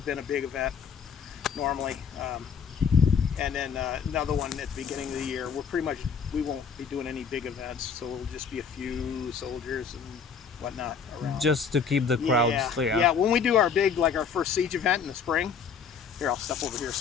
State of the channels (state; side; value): quieter; right; 6.3 dB